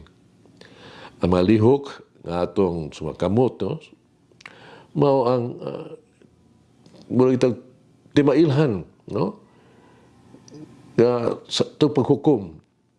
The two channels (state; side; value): identical; both; correlation 1.00